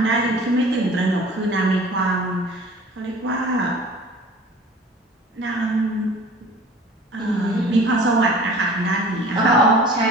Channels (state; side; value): normal; both; correlation 0.45